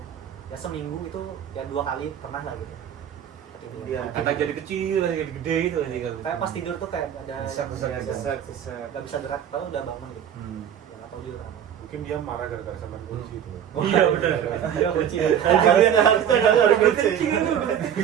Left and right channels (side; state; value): left; quieter; 9.3 dB